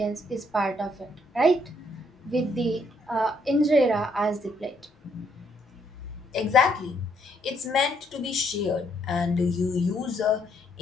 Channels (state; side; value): normal; both; correlation 0.70